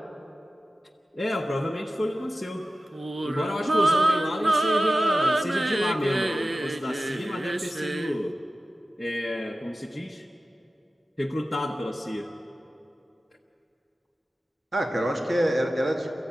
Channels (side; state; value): both; normal; correlation 0.95